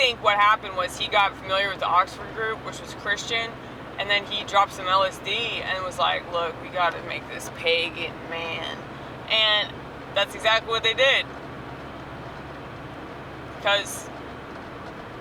what happened was he got familiar with the Oxford group, which was Christian, and then he dropped some LSD and was like, look, we got to make this pagan man. And that's exactly what they did. Because,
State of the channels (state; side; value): identical; both; correlation 1.00